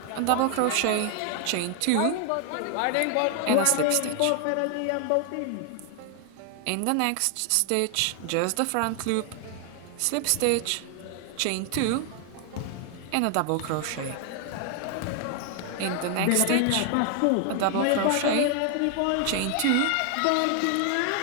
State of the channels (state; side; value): different; both; correlation 0.00